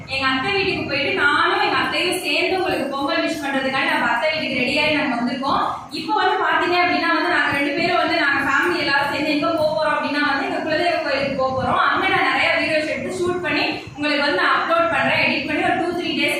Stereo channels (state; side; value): identical; both; correlation 1.00